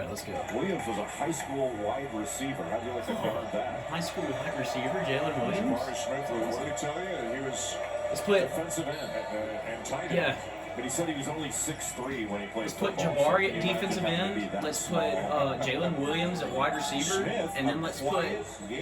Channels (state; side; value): identical; both; correlation 1.00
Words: let's go. Williams was a high school wide receiver. How'd you like to guard that? High school wide receiver, Jalen Williams? Jabari Smith, what did he tell you? He was defensive end and tight end. Yeah. But he said he was only 6'3" when he played. Let's put football, Jabari so at defensive end. Let's put Jalen Williams at wide receiver. Smith, and then let's put